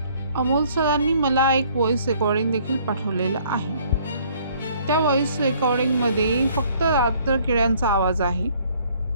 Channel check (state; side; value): inverted; both; correlation -0.60